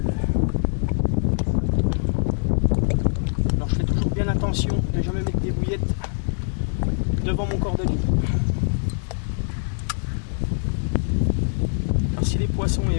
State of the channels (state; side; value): silent; right; digital silence